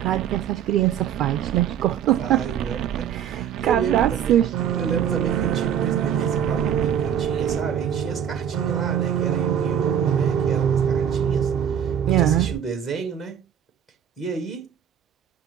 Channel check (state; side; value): quieter; left; 9.1 dB